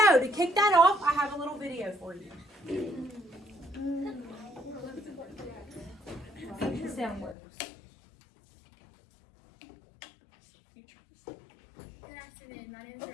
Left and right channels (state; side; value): drops out; right; at 7.4 s